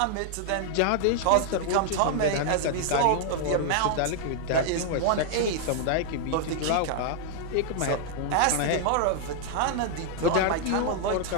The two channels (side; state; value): both; different; correlation 0.00